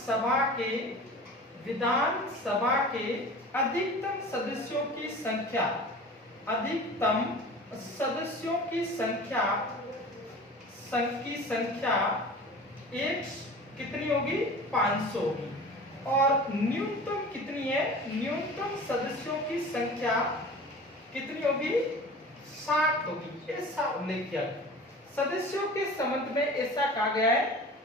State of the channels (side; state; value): both; normal; correlation 0.39